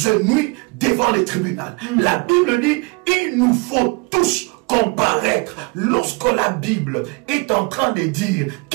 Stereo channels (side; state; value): left; quieter; 28.8 dB